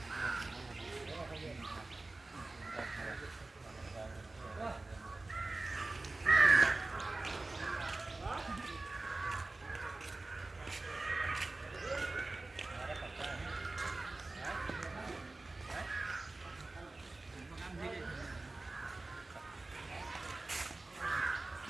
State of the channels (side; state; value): left; quieter; 3.1 dB